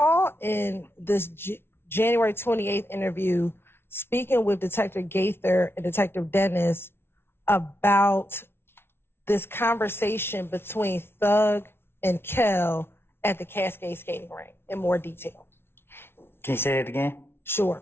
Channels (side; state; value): right; late; 0.12 ms